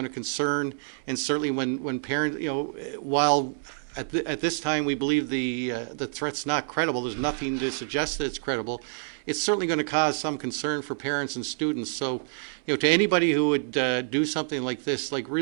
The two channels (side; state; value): left; silent; digital silence